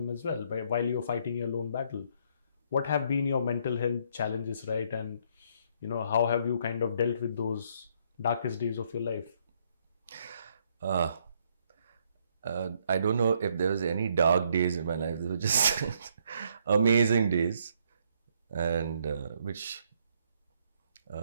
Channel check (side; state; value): both; inverted; correlation -0.69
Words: as well while you're fighting your lone battle. What have been your mental health challenges, right? And how have you kind of dealt with those darkest days of your life? I don't know if there was any dark days in my life. They were just amazing days, and which